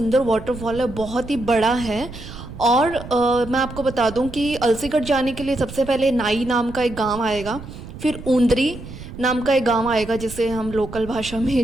वाटरफॉल है, बहुत ही बड़ा है। और मैं आपको बता दूँ कि अलसीगढ़ जाने के लिए सबसे पहले नाई नाम का एक गाँव आएगा, फिर ऊंदरी नाम का एक गांव आएगा जिसे हम लोकल भाषा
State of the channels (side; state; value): right; noise; rumble, 13 dB below the sound